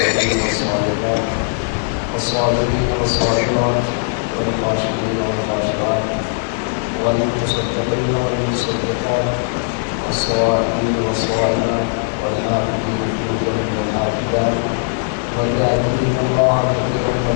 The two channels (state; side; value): silent; right; 59 dB below the other